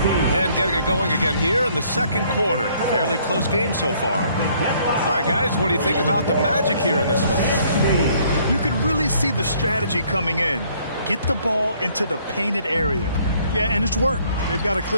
And getting it going again here in the second quarter. Fairly close game so far. All right, guys, what do you think about the Magic here in this one? You can really see the strategy coming in. Get the ball into the painted area. Yeah, and it's worked. They've got a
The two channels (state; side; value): inverted; both; correlation -0.63